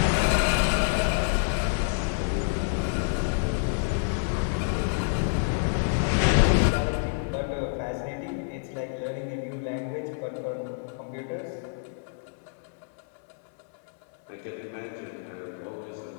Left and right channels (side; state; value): right; silent; 59 dB below the other